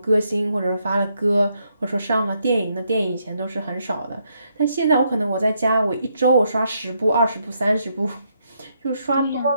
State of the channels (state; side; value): inverted; both; correlation -0.77